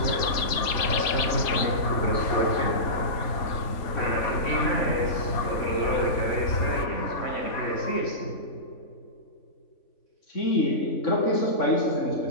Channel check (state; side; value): late; right; 3.5 ms